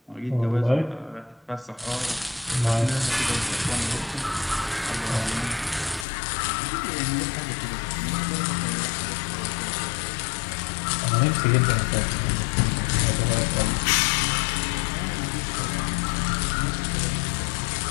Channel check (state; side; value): drops out; right; at 6.1 s